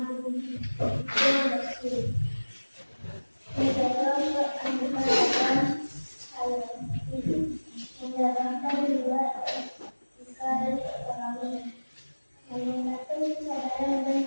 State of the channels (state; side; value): inverted; both; correlation -1.00